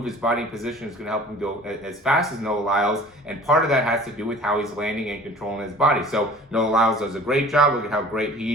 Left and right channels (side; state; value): both; normal; correlation 0.46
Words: his body in position is going to help him go as fast as Noah Lyles, and part of that has to do with how he's landing and controlling his body. So Noah Lyles does a great job. Look at how great